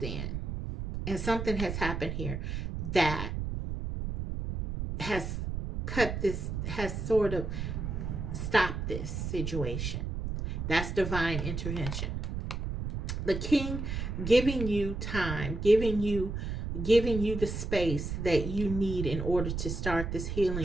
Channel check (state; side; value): noise; right; rumble, 4 dB below the sound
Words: in and something has happened here that has cut this, has sort of stopped this situation. That's divine intervention. The king giving you time, giving you the space that you need in order to start this